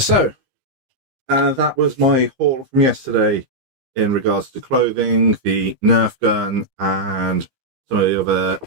that was my haul from yesterday in regards to clothing, the Nerf gun, and some of the other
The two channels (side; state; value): left; late; 15 ms